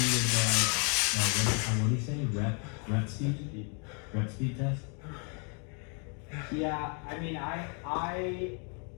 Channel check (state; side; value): quieter; right; 38.0 dB